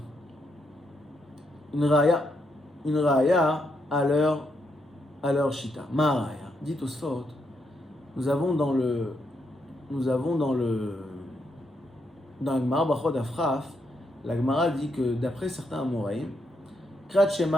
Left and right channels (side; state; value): both; normal; correlation 0.79